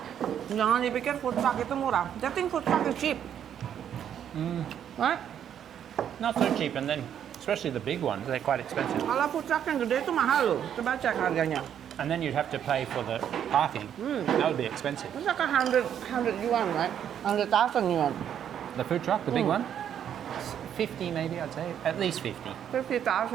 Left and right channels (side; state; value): left; quieter; 9.4 dB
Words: Jangan dipikir food truck itu murah. I think food truck is cheap. Right? Not so cheap, and then especially the big ones, they're quite expensive. Kalau food truck yang gede itu mahal loh. Coba cek harganya. And then you'd have to pay for the parking. That would be expensive. It's like 100 yuan, right? 100,000 yuan. The food truck, the big one? 50 maybe, I'd say. At least 50.